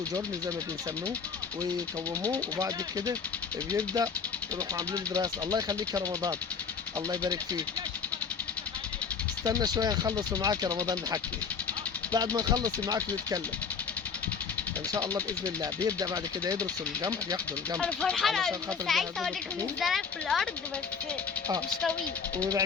جرن زي ما بنسموه ويكوموه وبعد كده بيبدا يروحوا عاملين دراسه. الله يخليك يا رمضان الله يبارك فيك. استنى شويه نخلص معاك يا رمضان نحكي. بعد ما نخلص معاك نتكلم ان شاء الله باذن الله. بيبدا بعد كده يدرسوا الجمح ياخدوا الجمح انا فرحانه علشان قوي. خاطر بس عايزه يجهزوه اوريكم بالطحين. الزرع في الارض بس مش طويل.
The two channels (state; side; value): quieter; right; 5.9 dB